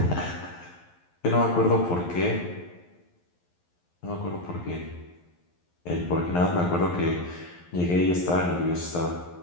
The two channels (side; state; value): right; late; 11 ms